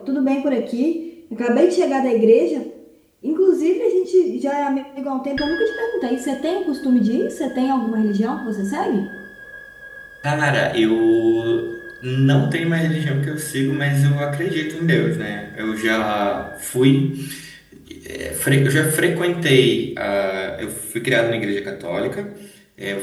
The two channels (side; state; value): both; identical; correlation 1.00